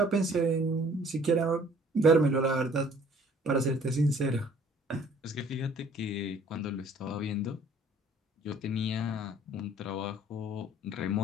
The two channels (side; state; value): both; normal; correlation 0.56